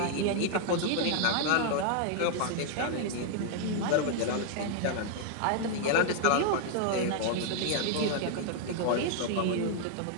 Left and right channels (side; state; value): both; different; correlation 0.00